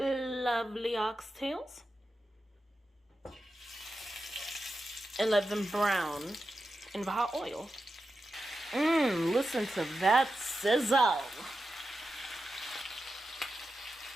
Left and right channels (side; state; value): both; normal; correlation 0.90